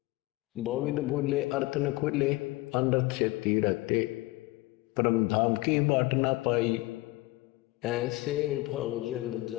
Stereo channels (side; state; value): right; quieter; 20.8 dB